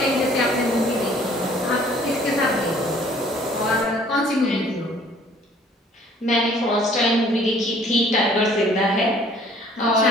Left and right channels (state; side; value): normal; both; correlation 0.56